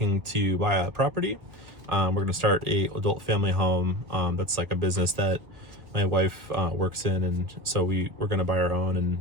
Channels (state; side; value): late; left; 1.5 ms